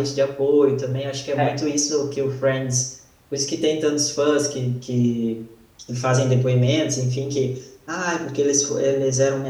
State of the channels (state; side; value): identical; both; correlation 1.00